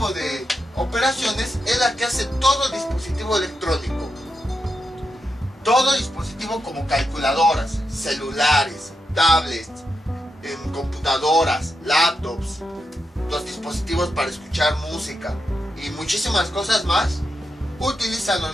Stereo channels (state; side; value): normal; both; correlation 0.86